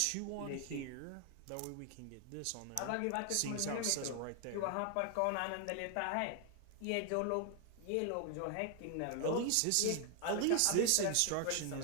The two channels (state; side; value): different; both; correlation 0.00